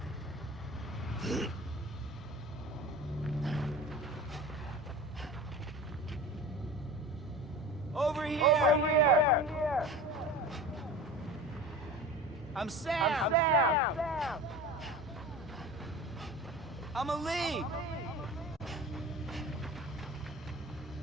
Over here! Over here! I'm Sam! I'm Ali!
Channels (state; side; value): normal; both; correlation 0.35